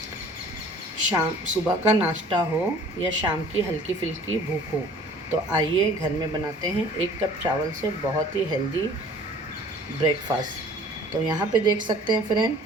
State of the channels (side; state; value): both; normal; correlation 0.50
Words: सुबह का नाश्ता हो या शाम की हल्की फुल्की भूख हो तो आइए घर में बनाते हैं 1 कप चावल से बहुत ही हेल्दी ब्रेकफास्ट। तो यहाँ पे देख सकते हैं फ्रेंड,